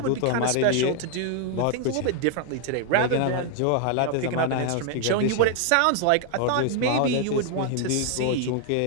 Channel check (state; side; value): different; both; correlation 0.00